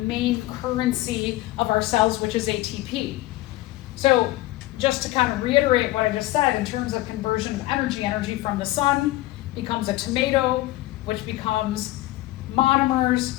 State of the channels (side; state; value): right; quieter; 17.7 dB